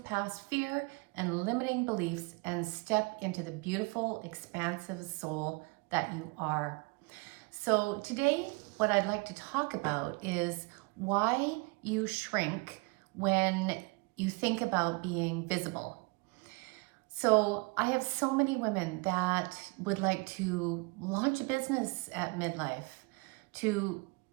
past fear and limiting beliefs and step into the beautiful, expansive soul that you are. So today, what I'd like to talk about is why you shrink when you think about being visible. So I have so many women that would like to launch a business at Midlife, to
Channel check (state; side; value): quieter; left; 28.0 dB